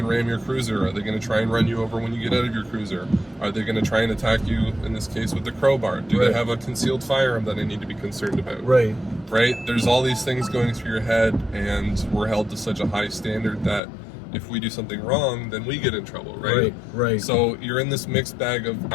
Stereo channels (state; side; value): drops out; right; at 13.8 s